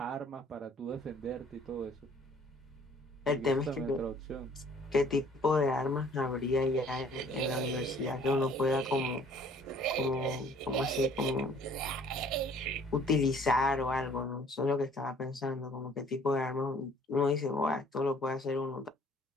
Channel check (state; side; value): normal; both; correlation 0.55